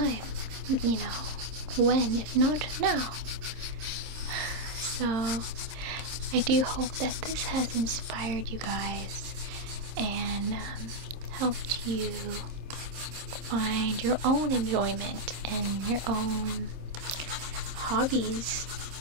you know. When, if not now? So I do hope that this has inspired you guys and helped you find your own enjoyment and your own hobbies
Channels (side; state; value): left; late; 26 ms